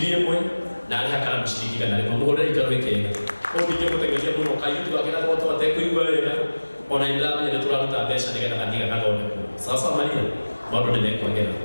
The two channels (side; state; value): both; inverted; correlation -1.00